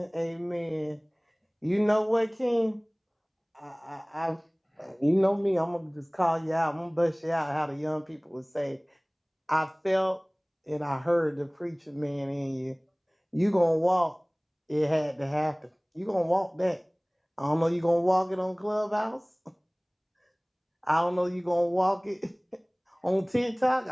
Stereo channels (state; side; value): identical; both; correlation 1.00